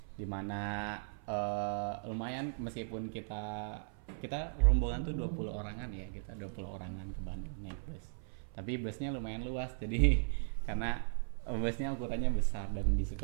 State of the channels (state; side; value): silent; left; 53 dB below the other